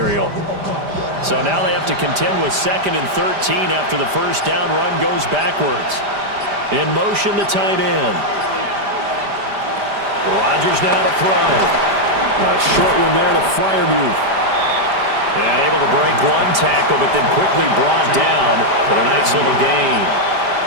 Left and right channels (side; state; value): left; late; 5.0 ms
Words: So now they have to contend with 2nd and 13 after the first down run goes backwards. In motion, the tight end. Rodgers now to throw. A short one there to Freiermuth. And able to break one tackle, but then quickly brought down for a nice little gain.